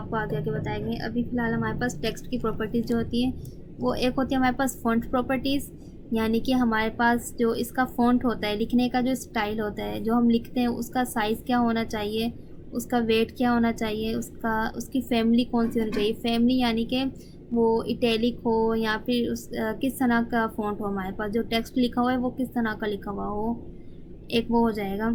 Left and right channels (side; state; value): both; identical; correlation 1.00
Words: आगे आगे बताएंगे। अभी फ़िलहाल हमारे पास टेक्स्ट की प्रॉपर्टीज़ जो होती हैं वो, एक होती है हमारे पास फ़ॉन्ट प्रॉपर्टीज़, यानी कि हमारे पास जो इसका फ़ॉन्ट होता है, लिखने का जो स्टाइल होता है, जो हम लिखते हैं उसका साइज़ क्या होना चाहिए, उसका वेट क्या होना चाहिए, उसकी फैमिली कौन सी होनी चाहिए। फैमिली यानी कि वो इटैलिक हो या फिर किस तरह का फ़ॉन्ट हो, हमारे पास जो टेक्स्ट लिखा हुआ है वो किस तरह का लिखा हुआ हो, एक वो हो